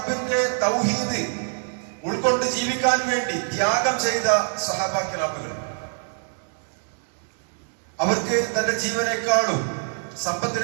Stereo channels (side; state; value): left; silent; digital silence